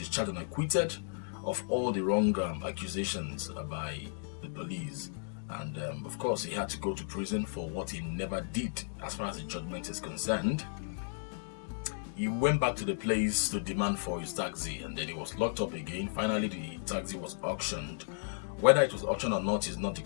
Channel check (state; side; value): silent; right; digital silence